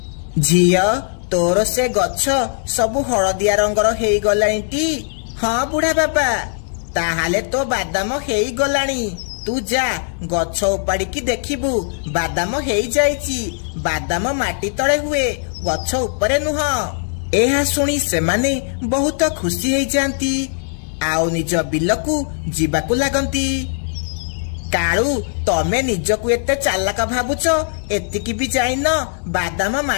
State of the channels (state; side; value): silent; right; 63 dB below the other